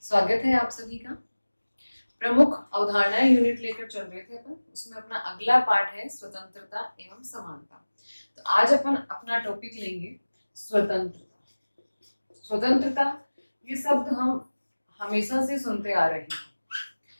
स्वागत है आप सभी का। प्रमुख अवधारणाएं यूनिट लेकर चल रहे थे अपन, उसमें अपना अगला पार्ट है स्वतंत्रता एवं समानता। तो आज अपन अपना टॉपिक लेंगे स्वतंत्रता। स्वतंत्रता ये शब्द हम हमेशा से सुनते आ रहे हैं।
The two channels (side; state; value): both; inverted; correlation -1.00